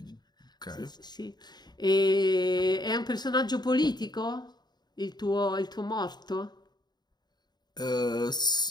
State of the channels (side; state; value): right; late; 0.20 ms